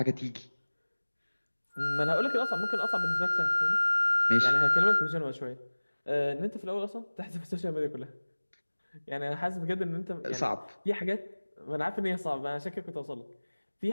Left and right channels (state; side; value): inverted; both; correlation -1.00